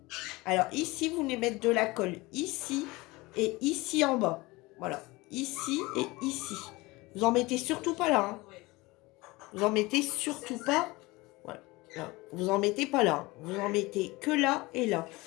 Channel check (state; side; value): quieter; right; 22.1 dB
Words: Alors, ici, vous venez mettre de la colle ici et ici en bas. Voilà, ici et ici. Vous en mettez surtout pas là. Hein. Vous en mettez surtout pas. Voilà. Là. Vous en mettez pas là. Vous en mettez que là et là.